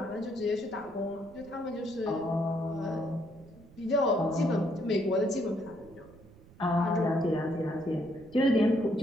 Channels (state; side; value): noise; right; rumble, 23 dB below the sound